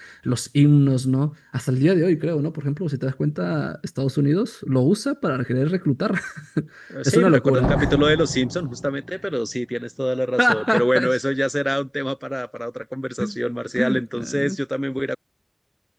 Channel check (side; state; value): both; identical; correlation 1.00